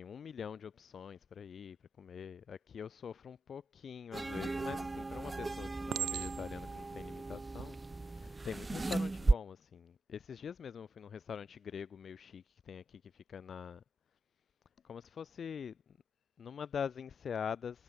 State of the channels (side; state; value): both; normal; correlation 0.87